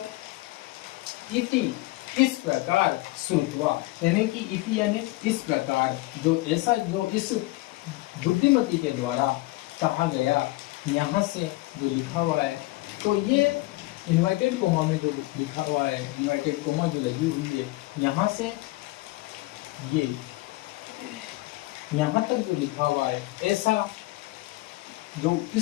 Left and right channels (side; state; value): right; quieter; 20.5 dB